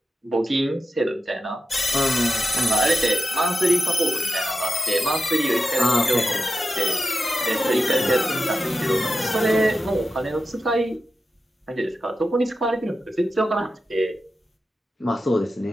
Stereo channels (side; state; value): both; normal; correlation 0.90